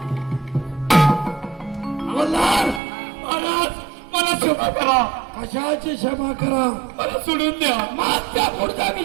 मल्हार, महाराज मला क्षमा करा, कशाची क्षमा करा. मला सोडून द्या. मागच्या पुढचा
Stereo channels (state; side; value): drops out; left; at 2.8 s